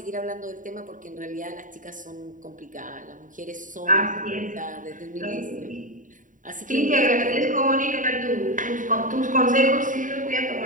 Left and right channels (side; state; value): left; late; 0.38 ms